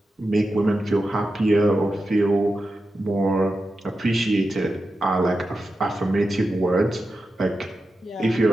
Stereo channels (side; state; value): both; normal; correlation 0.91